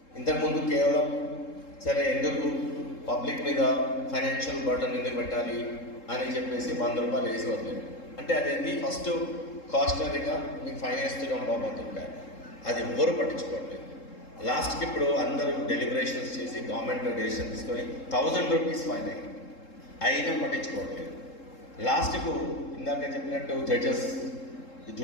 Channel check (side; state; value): right; late; 3.7 ms